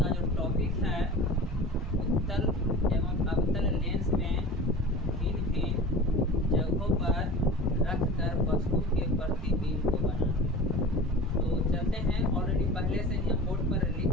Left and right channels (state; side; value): normal; both; correlation 0.36